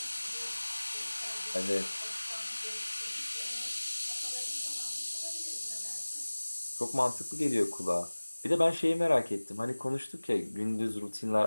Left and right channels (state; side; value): inverted; both; correlation -1.00